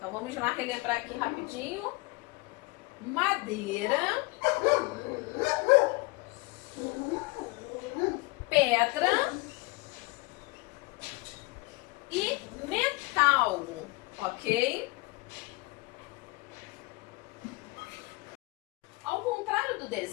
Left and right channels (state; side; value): quieter; right; 24.7 dB